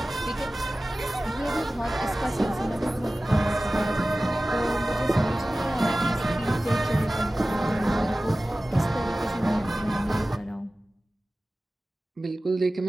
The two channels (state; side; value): normal; both; correlation 0.96